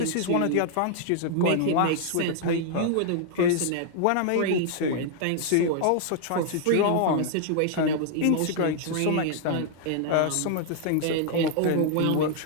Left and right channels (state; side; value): different; both; correlation 0.00